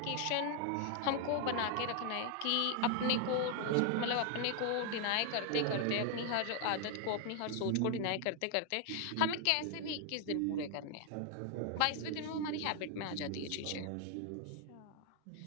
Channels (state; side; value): different; both; correlation 0.00